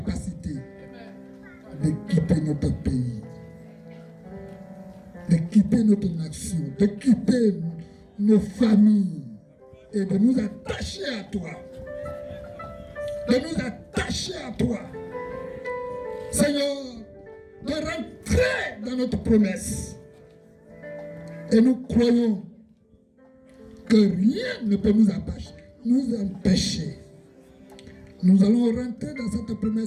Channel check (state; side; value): identical; both; correlation 1.00